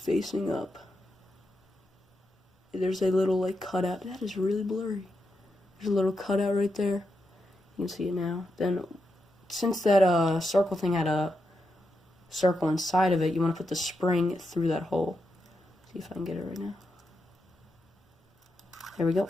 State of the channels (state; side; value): normal; both; correlation 0.85